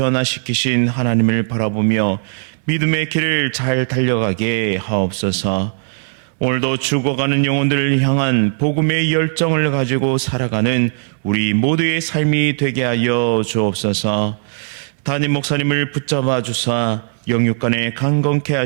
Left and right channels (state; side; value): silent; left; 68 dB below the other